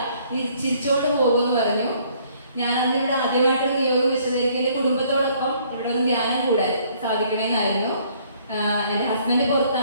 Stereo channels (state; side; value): inverted; both; correlation -0.62